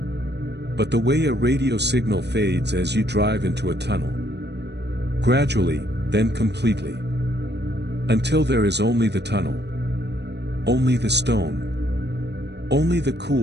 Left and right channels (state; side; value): late; left; 0.50 ms